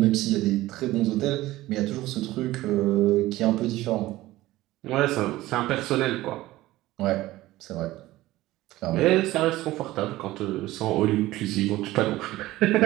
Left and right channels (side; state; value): left; quieter; 17.1 dB